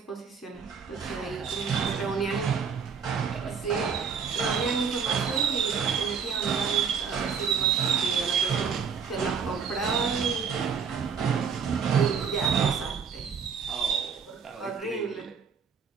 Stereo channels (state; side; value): quieter; left; 6.3 dB